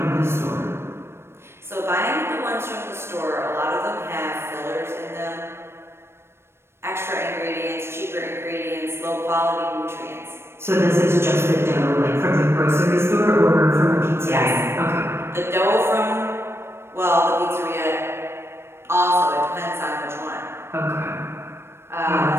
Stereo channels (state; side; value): late; left; 0.12 ms